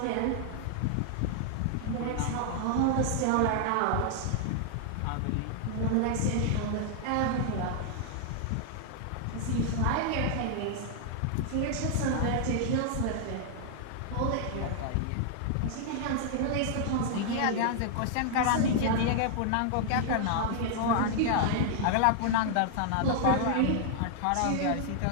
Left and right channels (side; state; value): both; different; correlation 0.00